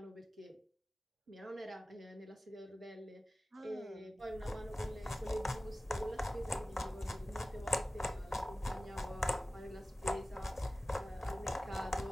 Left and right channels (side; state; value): both; normal; correlation 0.97